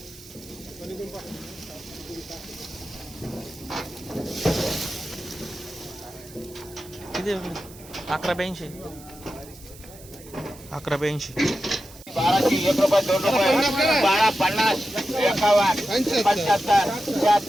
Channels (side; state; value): right; noise; hiss, 20 dB below the sound